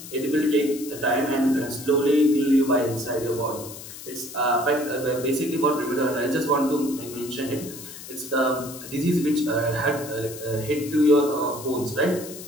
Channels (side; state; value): left; noise; hiss, 13 dB below the sound